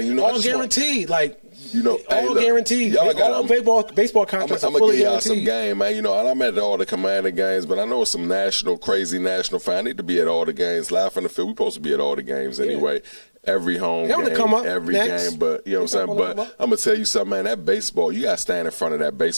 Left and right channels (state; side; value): inverted; both; correlation -1.00